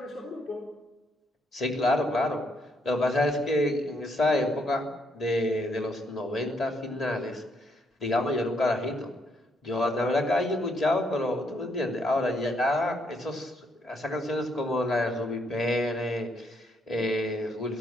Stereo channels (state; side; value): normal; both; correlation 0.73